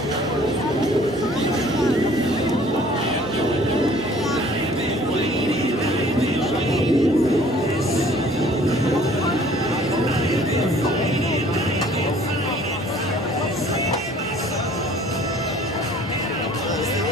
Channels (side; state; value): both; normal; correlation 0.54